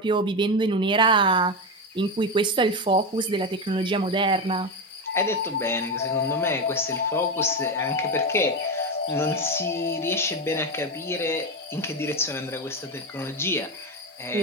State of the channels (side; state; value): both; normal; correlation 0.14